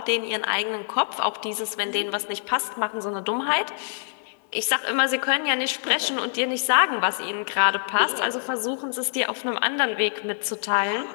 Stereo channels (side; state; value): right; silent; digital silence